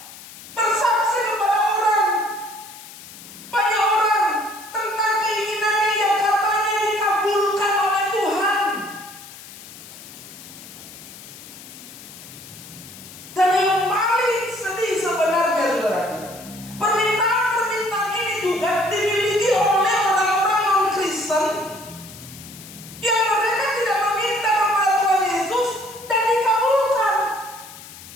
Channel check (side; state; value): left; noise; hiss, 17 dB below the sound